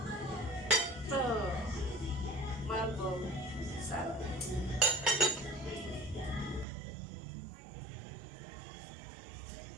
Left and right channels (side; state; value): left; drops out; at 6.7 s